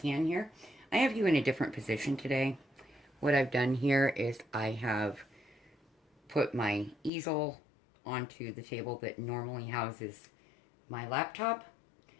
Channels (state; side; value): drops out; right; at 7.1 s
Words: here. I have you in a different position today. What I've done here is I have put my easel onto the table that normally houses my laptop,